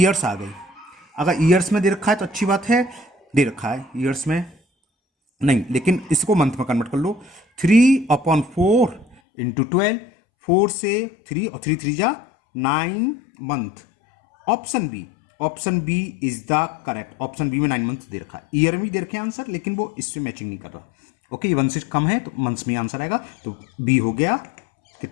आ गई। अगर ईयर्स में दे रखा है तो अच्छी बात है, दे रखा है ईयर्स में नहीं, लेकिन इसको मंथ में कन्वर्ट कर लो। 3/4 इंटू 12, 4 से 3 और 3 3 जा 9 month. Option B, option B is the correct. Option B में 9 मंथ दे रखा है, ईयर में दे रखे आंसर, लेकिन वो इससे मैचिंग नहीं कर रहा। ओके, ये 1 से कम है तो मंथ्स में आंसर आएगा, तो बी हो गया।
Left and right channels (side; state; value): right; drops out; at 9.2 s